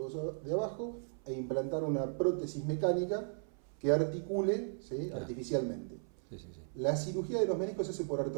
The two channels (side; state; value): left; silent; 54 dB below the other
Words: hueso de abajo e implantar una prótesis mecánica que articule, ¿sí? Artificialmente. Sí, sí, sí. La cirugía de los meniscos se hace por